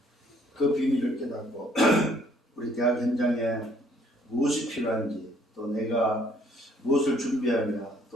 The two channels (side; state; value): both; normal; correlation 0.63